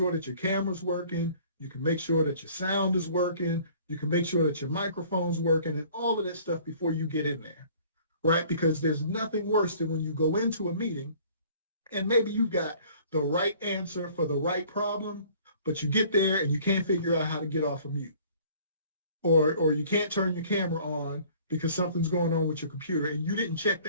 that your camera's working, you can make sure that your sound is working, you can make sure that your microphone's working, and all of that stuff before you get in there, right? Because there's nothing worse than when you go into a meeting and maybe you got the right answer for the right problem, but you get there and you can't figure out how to get off of mute. Or you can't turn your camera on because something's going on with your computer and you didn't check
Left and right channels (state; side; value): inverted; both; correlation -0.53